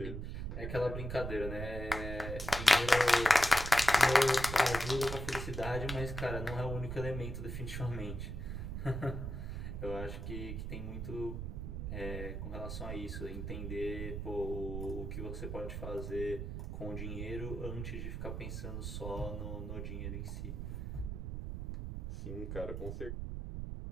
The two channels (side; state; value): right; noise; rumble, 5 dB below the sound